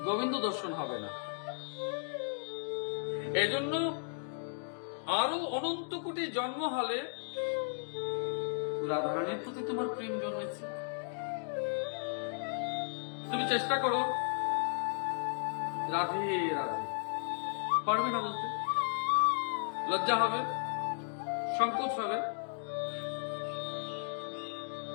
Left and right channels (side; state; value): right; silent; digital silence